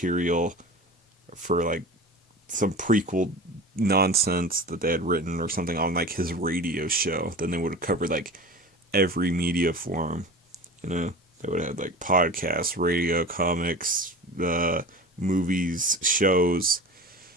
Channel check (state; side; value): normal; both; correlation 0.34